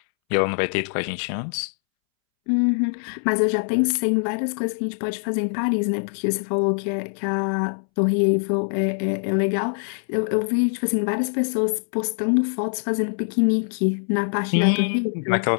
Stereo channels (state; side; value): silent; right; 63 dB below the other